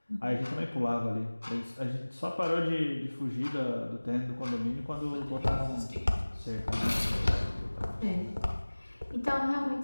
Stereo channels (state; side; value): inverted; both; correlation -1.00